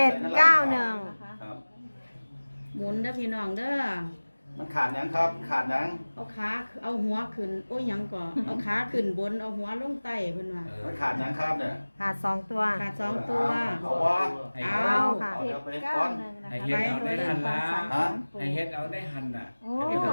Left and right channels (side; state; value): both; inverted; correlation -1.00